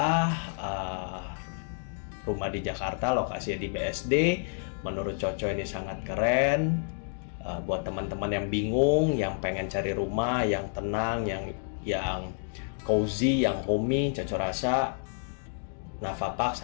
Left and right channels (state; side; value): silent; right; digital silence